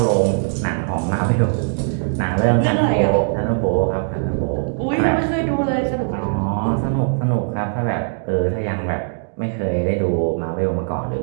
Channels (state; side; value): silent; left; 66 dB below the other